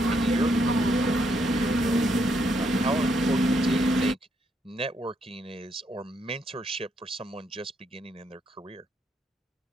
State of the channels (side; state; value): both; normal; correlation 0.76